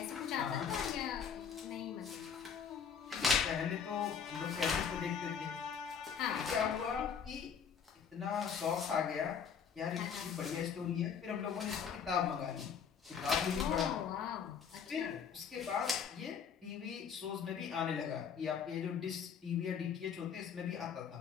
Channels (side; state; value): right; quieter; 7.0 dB